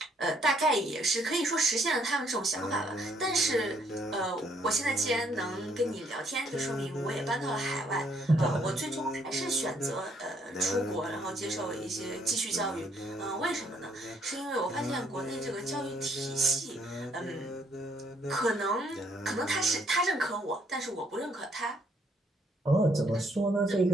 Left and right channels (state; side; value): normal; both; correlation 0.68